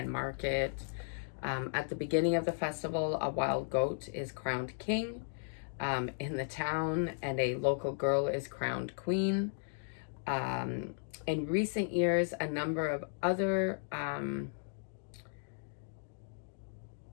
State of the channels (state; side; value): silent; right; digital silence